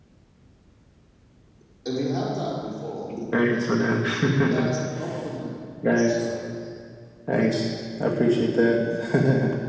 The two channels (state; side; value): identical; both; correlation 1.00